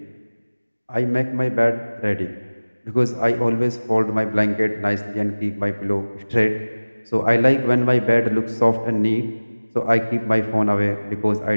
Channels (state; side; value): inverted; both; correlation -1.00